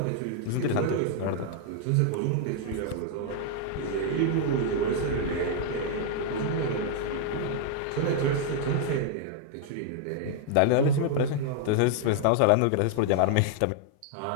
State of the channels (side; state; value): both; different; correlation 0.00